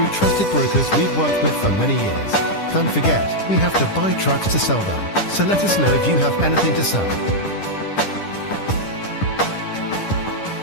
trusted brokers we've worked with for many years. Don't forget, we have to buy trucks to sell them, so let us know if you have anything to sell.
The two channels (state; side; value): late; right; 10 ms